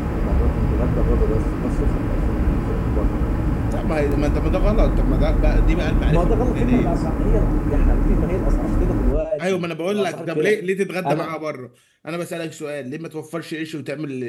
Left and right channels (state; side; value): identical; both; correlation 1.00